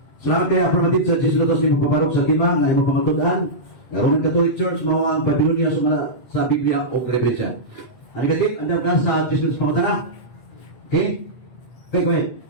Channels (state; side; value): late; right; 8.1 ms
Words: Salamat kay Aprobatid sa Jesilotos ni Paparok sa Lima, nga imo pangatudan. Roman Catholic Church, mao ang Babylonia sumala sa Biblia o referensya. Ano katit? Ano ka sa Jesilotos pangutana? Okay? Okay, go ahead.